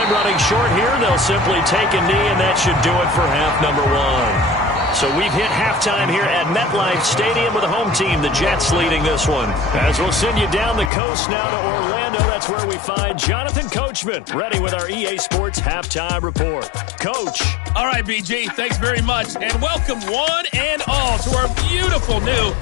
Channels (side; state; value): right; drops out; at 10.9 s